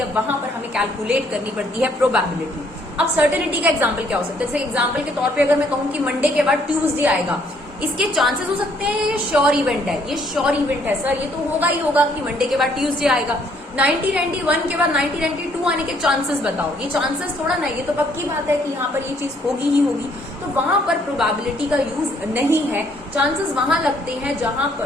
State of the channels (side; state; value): both; normal; correlation 0.66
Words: वहां पर हमें कैलकुलेट करनी पड़ती है प्रोबेबिलिटी। अब सर्टेनिटी का एग्जांपल क्या हो सकता है? जैसे एग्जांपल के तौर पे अगर मैं कहूं कि मंडे के बाद ट्यूसडे आएगा, इसके चांसेस हो सकते हैं ये श्योर इवेंट है, ये श्योर इवेंट है सर, ये तो होगा ही होगा कि मंडे के बाद ट्यूसडे आएगा। 1991 के बाद 1992 आने के चांसेस बताओ, ये चांसेस थोड़ा ना, ये तो पक्की बात है कि यहाँ पर ये चीज होगी ही होगी। तो वहां पर प्रोबेबिलिटी का यूज नहीं है। चांसेस वहां लगते हैं जहां